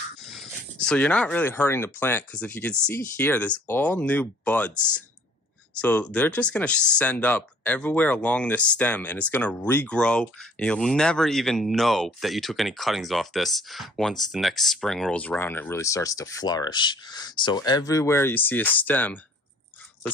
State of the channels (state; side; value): normal; both; correlation 0.55